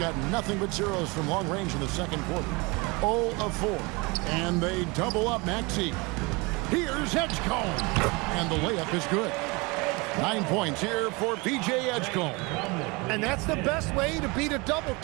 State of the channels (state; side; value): quieter; left; 26.6 dB